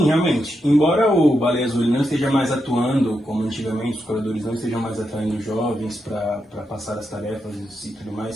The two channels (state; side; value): normal; both; correlation 0.84